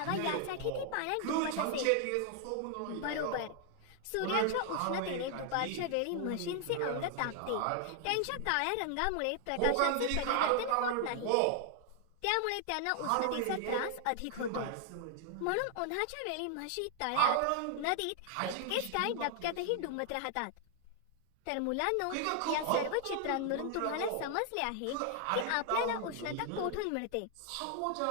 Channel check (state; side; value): different; both; correlation 0.00